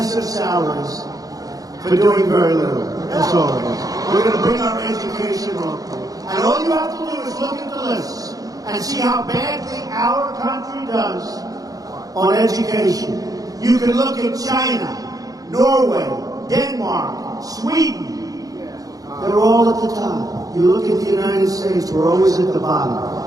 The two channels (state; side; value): late; left; 0.17 ms